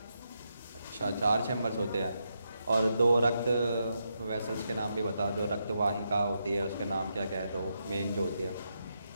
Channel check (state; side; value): inverted; both; correlation -0.83